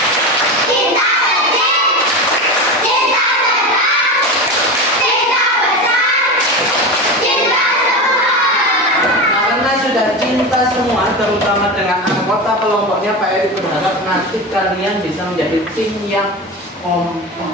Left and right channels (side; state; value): both; normal; correlation 0.24